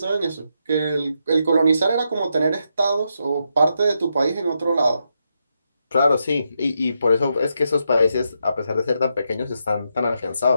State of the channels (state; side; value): inverted; both; correlation -0.82